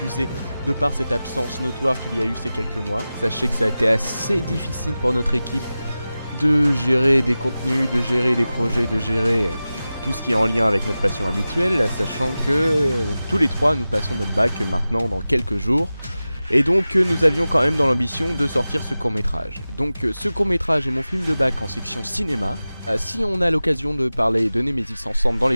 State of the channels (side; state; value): both; inverted; correlation -0.95